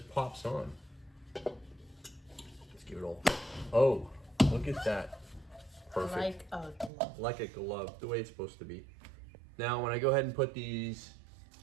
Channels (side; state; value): left; drops out; at 6.9 s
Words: on. Let's give it all. Oh, look at that. Perfect. Like a glove. Like a glove, the way it's supposed to be. Now, when I go ahead and put these